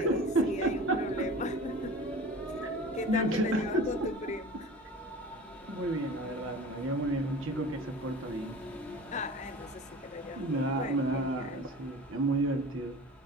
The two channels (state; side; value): normal; both; correlation 0.38